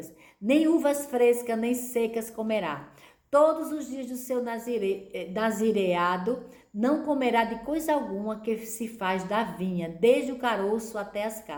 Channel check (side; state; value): both; identical; correlation 1.00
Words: nem uvas frescas, nem secas comerá. Todos os dias do seu nazireado não comerá de coisa alguma que se faz da vinha, desde o caroço até as